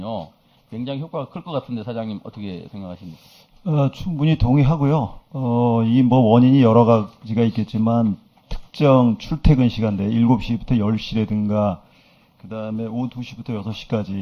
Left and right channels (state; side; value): identical; both; correlation 1.00